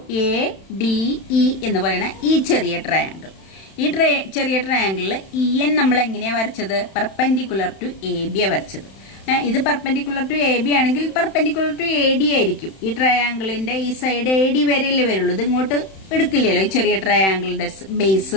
എ ഡി ഇ എന്ന് പറയുന്ന ഈ ചെറിയ ട്രയാങ്കിൾ. ഈ ചെറിയ ട്രയാങ്കിളിൽ ഇ എൻ നമ്മൾ എങ്ങനെയാ വരച്ചത്? പെർപെൻഡിക്കുലർ ടു എ ബി വരച്ചത്. ഇത് പെർപെൻഡിക്കുലർ ടു എ ബി ആണെങ്കിൽ പെർപെൻഡിക്കുലർ ടു എ ഡി ആയിരിക്കും. ഈ ട്രയാങ്കിളിന്റെ ഈ സൈഡ് എ ഡി വരെയല്ലേ വരുള്ളൂ, ഇത് ഇങ്ങോട്ട് എടുക്കില്ലല്ലോ. ഈ ചെറിയ ട്രയാങ്കിളിന്റെ ബേസ്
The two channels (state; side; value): late; right; 31 ms